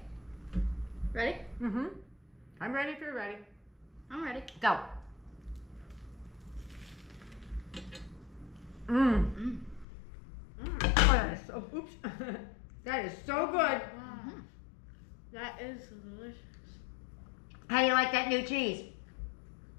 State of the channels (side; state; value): right; drops out; at 9.9 s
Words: Ready? Mm-hmm. I'm ready if you're ready. I'm ready. Go. Mmm. Oh, that is so, oops. That is so good. Wow. That is delicious. How do you like that new cheese?